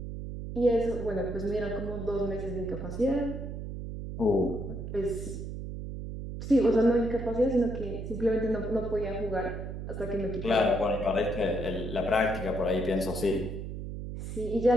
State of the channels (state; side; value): noise; right; hum, 7 dB below the sound